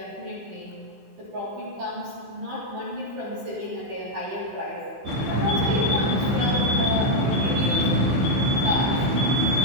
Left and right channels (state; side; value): late; left; 15 ms